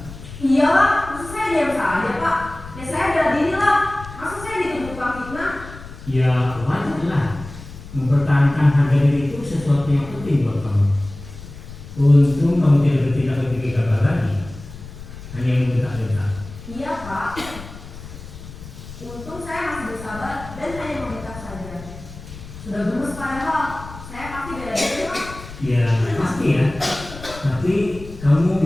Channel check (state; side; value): noise; left; rumble, 14 dB below the sound